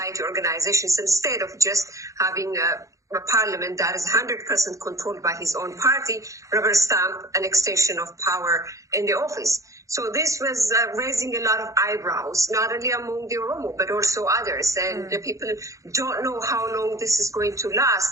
organizations, instead of just having a parliament that is 100% controlled by his own party, rubber stamp an extension of power in the office. So this was raising a lot of eyebrows, not only among the Oromo, but also others. And the people don't know how long this is going to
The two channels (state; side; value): late; left; 0.15 ms